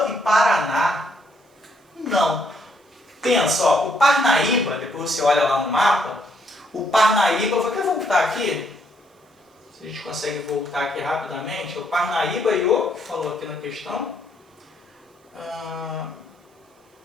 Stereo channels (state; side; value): normal; both; correlation 0.72